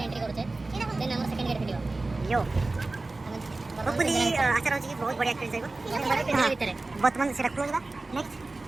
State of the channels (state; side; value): quieter; left; 3.2 dB